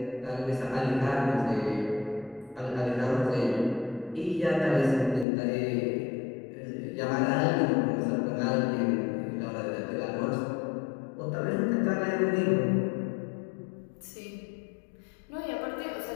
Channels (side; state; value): right; drops out; at 5.2 s